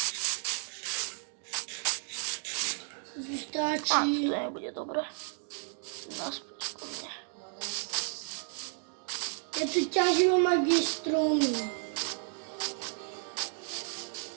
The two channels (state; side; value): silent; left; 56 dB below the other